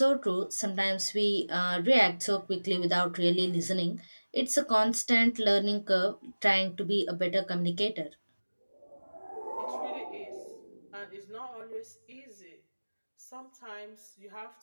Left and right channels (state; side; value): inverted; both; correlation -1.00